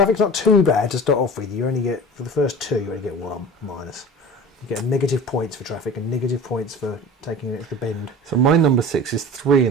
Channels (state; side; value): normal; both; correlation 0.37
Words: not too bad to start off with. You only get, for the first 2, you only get 1 minus. You get negative points for traffic and negative points for taking an extra bend. So my number 6 is 3